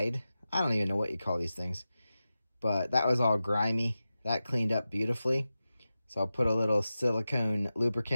I don't even know what you call these things, but that was all grimy. That cleaned up beautifully. So I'll put a little silicone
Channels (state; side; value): inverted; both; correlation -0.94